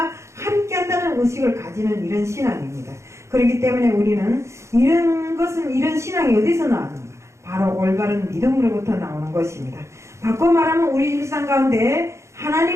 함께 한다는 의식을 가지는 이런 신앙입니다. 그렇기 때문에 우리는 이런 신앙이 어디서 나왔는가? 바로 올바른 믿음으로부터 나오는 것입니다. 바꿔 말하면 우리 일상 가운데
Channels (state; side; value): late; left; 0.14 ms